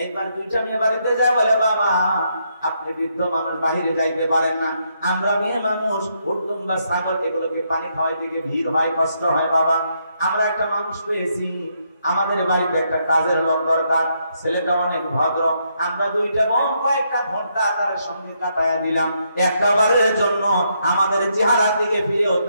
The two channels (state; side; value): inverted; both; correlation -0.77